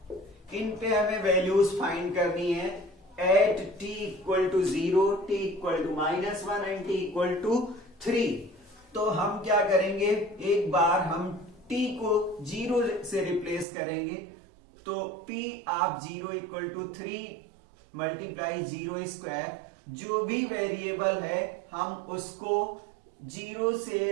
इन पे हमें वैल्यूज फाइंड करनी है at t equal to 0, t equal to -1 and t equal to 3। तो हम क्या करेंगे, एक बार हम t को 0 से रिप्लेस करेंगे, तो p of 0 equal to 3 multiply 0 square, जो भी वेरिएबल है हम उसको 0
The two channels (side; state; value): left; drops out; at 13.7 s